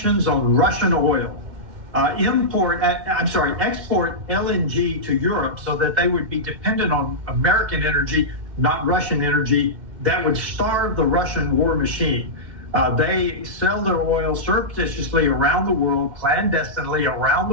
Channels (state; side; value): late; left; 2.2 ms